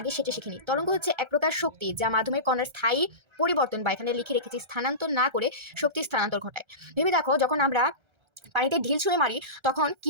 সেটা শিখিনি। তরঙ্গ হচ্ছে এক প্রকার শক্তি যা মাধ্যমের কণার স্থায়ী পরিবর্তন বা এখানে লিখে রেখেছি স্থানান্তর না করে শক্তি স্থানান্তর ঘটায়। ভেবে দেখো, যখন আমরা পানিতে ঢিল ছুঁড়ে মারি তখন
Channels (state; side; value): late; left; 1.3 ms